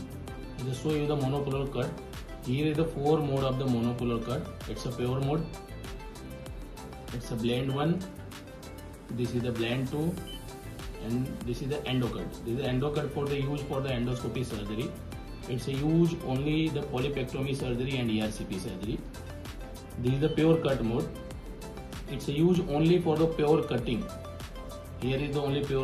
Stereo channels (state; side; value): identical; both; correlation 1.00